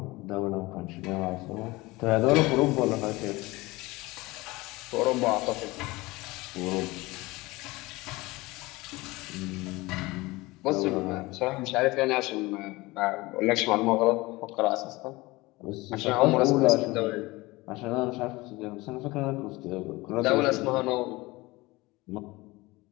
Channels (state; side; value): quieter; right; 21.5 dB